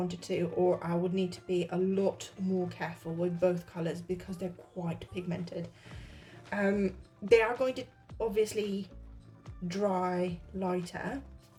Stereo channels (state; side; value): identical; both; correlation 1.00